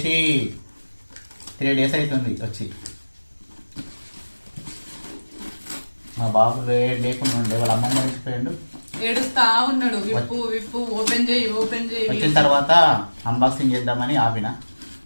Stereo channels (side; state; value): both; inverted; correlation -1.00